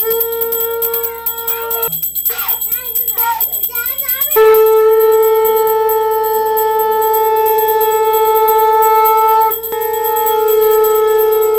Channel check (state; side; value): noise; right; hum, 28 dB below the sound